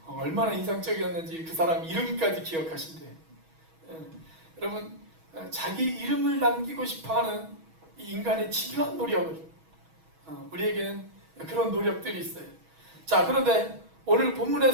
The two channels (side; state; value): left; late; 6.2 ms